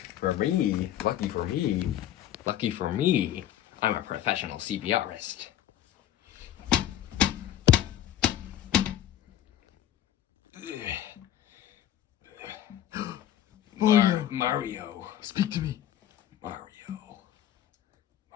lucky for me, I'm a professional CPRist. Mario. Speak to me. Mario.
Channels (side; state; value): right; quieter; 11.6 dB